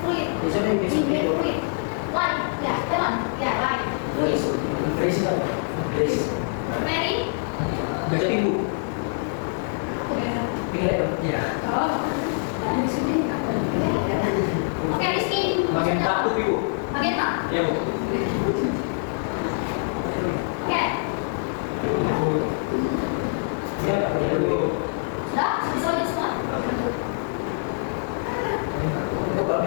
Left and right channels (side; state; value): right; silent; digital silence